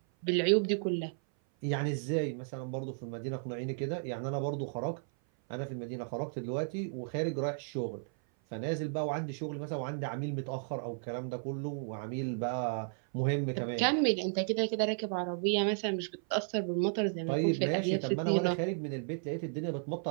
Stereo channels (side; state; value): left; silent; 55 dB below the other